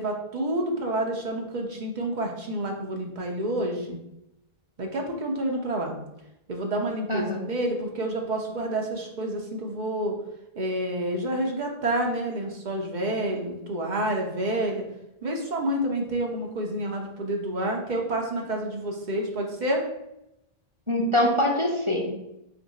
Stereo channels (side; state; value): left; late; 2.1 ms